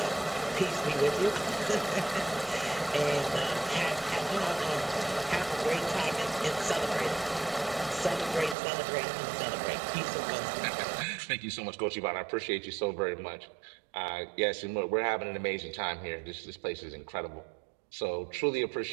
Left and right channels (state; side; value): drops out; left; at 8.6 s